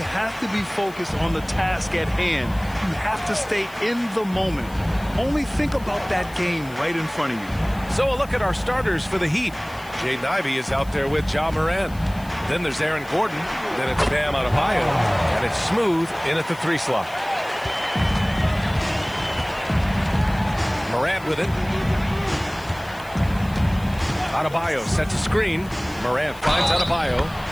have to be focused on the task at hand. You have to stay in the moment. Only think about that game right in front of you. So a look at our starters for the Heat. Jaden Ivey is out there with Ja Morant. Then there's Aaron Gordon. Then it's Bam Adebayo. And it's Smooth in at the 3 slot. Morant with it. Adebayo sets a screen. Morant finds Adebayo.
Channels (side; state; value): left; noise; hiss, 22 dB below the sound